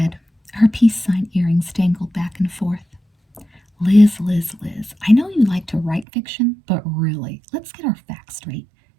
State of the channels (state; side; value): drops out; left; at 6.1 s